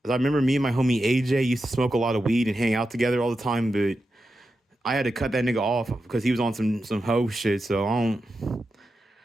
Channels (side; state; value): both; normal; correlation 0.89